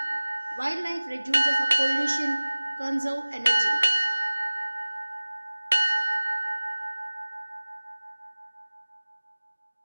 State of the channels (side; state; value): both; inverted; correlation -1.00